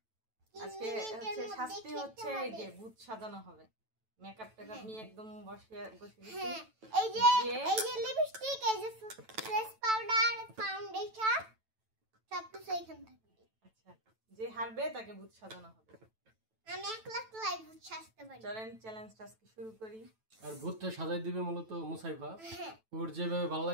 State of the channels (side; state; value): left; late; 9.1 ms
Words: আজকে হচ্ছে শাস্তি হচ্ছে এই যে ভূত সাজানো হবে। মেকআপ টেকআপ নিয়ে একদম বসে গেছি। এই যে লিপস্টিক, এই যে ফেস পাউডার, ফাউন্ডেশন সব কিছু এখানে থাকবে। আচ্ছা, যে হারবে তাকে ভূত সাজানো হবে। আমি একলা ভূত সাজতে পারি। চলেন চ্যালেঞ্জটা আজকে শুরু করি। আর ভূতটা সাজাই দিবে মূলত মুসাইফা। ওর যেভাবে ভালো